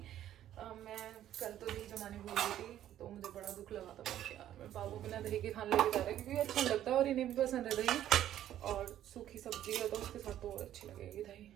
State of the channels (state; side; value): quieter; left; 11.8 dB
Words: मैं कल तो दही जमाने भूल गई थी, तो मुझे बड़ा दुख लगा था कि यार मेरे बाबू बिना दही के खाने लेके जा रहा है, क्योंकि अच्छा लगता है और इन्हें भी पसंद है दही, और सूखी सब्जी है तो उसके साथ तो और अच्छी लगेगी दही।